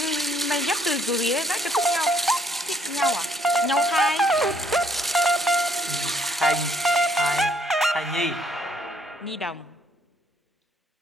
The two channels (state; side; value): normal; both; correlation 0.67